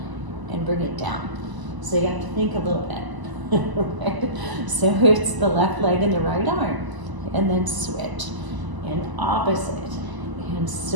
and bring it down. So you have to think a little bit. Right? So it's the left leg and the right arm, and then switch, and opposite, and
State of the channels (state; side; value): late; left; 1.0 ms